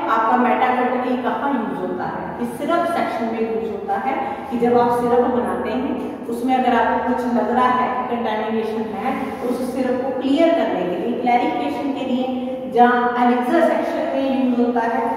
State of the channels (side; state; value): both; identical; correlation 1.00